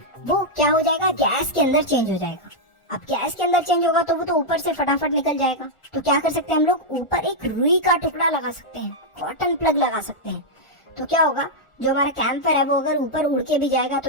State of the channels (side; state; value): right; late; 1.4 ms